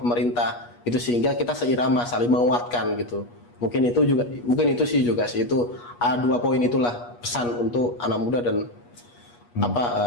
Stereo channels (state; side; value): late; right; 8.3 ms